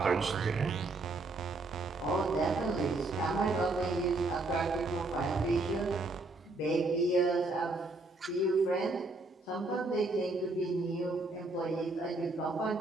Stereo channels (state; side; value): quieter; left; 3.1 dB